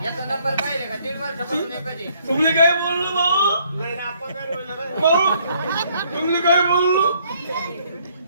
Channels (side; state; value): both; inverted; correlation -0.65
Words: तुम्ही काय बोललो भाऊ. नाही ना आपा कर भाऊ तुम्ही काय बोललो.